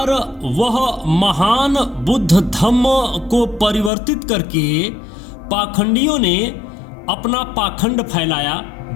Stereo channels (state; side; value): drops out; right; at 3.9 s